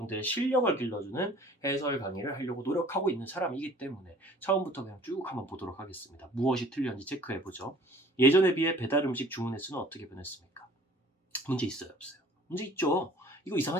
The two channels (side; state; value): both; normal; correlation 0.51